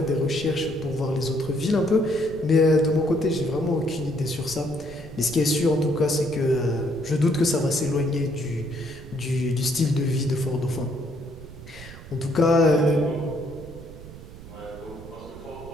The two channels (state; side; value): noise; right; rumble, 16 dB below the sound